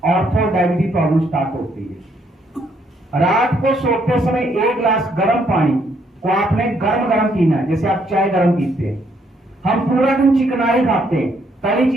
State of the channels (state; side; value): normal; both; correlation 0.71